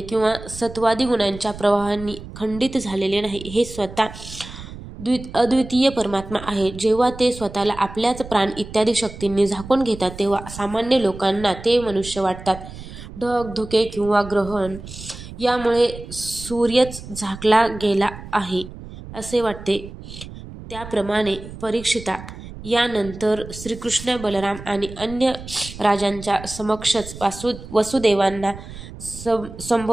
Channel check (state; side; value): noise; right; rumble, 14 dB below the sound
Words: किंवा सत्वादी गुणांच्या प्रवाहांनी खंडित झालेले नाही. हे स्वतः अद्वितीय परमात्मा आहे. जेव्हा ते स्वतःला आपल्याच प्राण इत्यादी शक्तींनी झाकून घेतात तेव्हा सामान्य लोकांना ते मनुष्य वाटतात. ढग, धुके किंवा ग्रहण यामुळे सूर्यच झाकला गेला आहे असे वाटते. त्याप्रमाणे परीक्षिता, यानंतर श्रीकृष्ण, बलराम आणि अन्य राजांच्या समक्षच वसुदेवांना